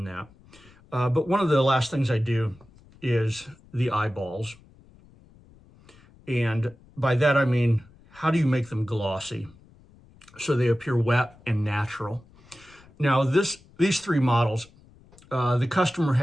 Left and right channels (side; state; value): left; noise; rumble, 26 dB below the sound